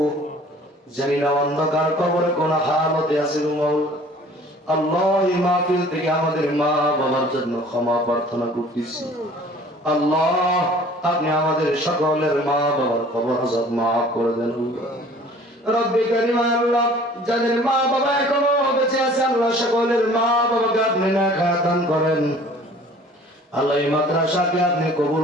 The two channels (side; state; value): both; normal; correlation 0.50